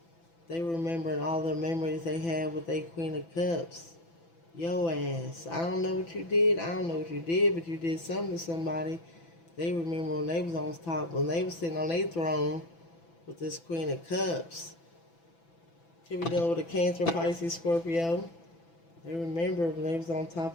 They remembering all the memories they had with their Queen of Cups. Yo ass. I don't know what you did. I don't know what you did, but you did something to somebody. They remember when they was on top, when they was sitting on their throne with this Queen of Cups. Could be dealing with a Cancer, Pisces, Scorpio. They remember when they was on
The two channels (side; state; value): right; late; 6.0 ms